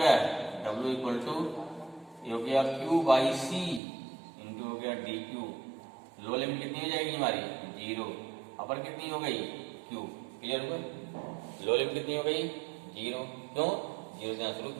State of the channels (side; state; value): left; drops out; at 3.8 s